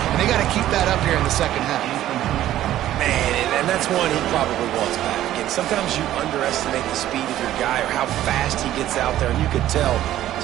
they got to keep that up here in the second half. Man, and that's one he probably wants back. Again, sometimes you underestimate the speed of your guy or how fast he gets out there, and you could tell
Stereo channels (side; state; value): left; quieter; 13.2 dB